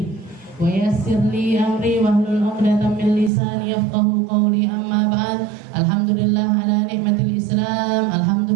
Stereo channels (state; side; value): drops out; left; at 3.3 s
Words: wa yassir li amri wahlul 'uqdatam min lisani yafqahu qawli. Amma ba'd. Alhamdulillah ala nikmatil Islam,